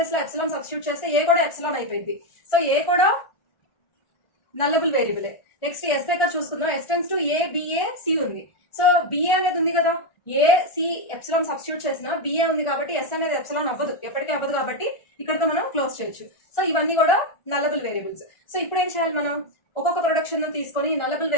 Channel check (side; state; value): right; late; 1.4 ms